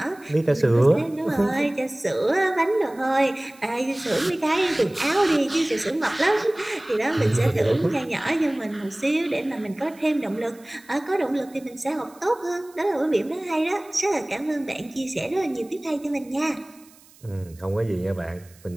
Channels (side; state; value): right; noise; hiss, 26 dB below the sound